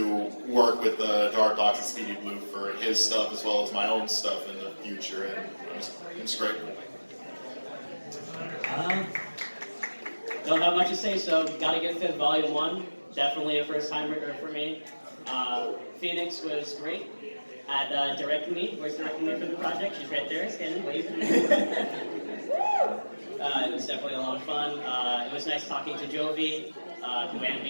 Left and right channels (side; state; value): both; inverted; correlation -1.00